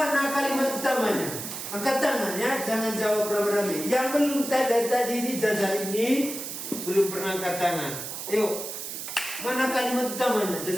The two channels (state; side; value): noise; right; hiss, 7 dB below the sound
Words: kalimat utamanya? Angkat tangan ya, jangan jawab rame-rame. Yang belum tadi ini jajar ini belum pernah angkat tangan. Ayo, mana kalimat utamanya?